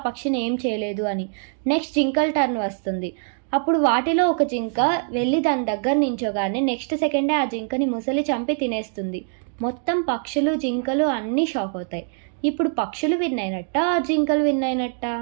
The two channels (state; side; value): silent; left; 63 dB below the other